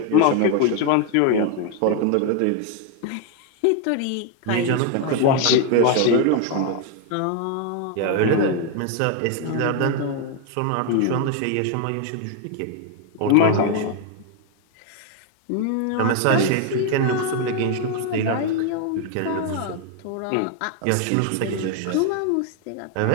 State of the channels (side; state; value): both; different; correlation 0.01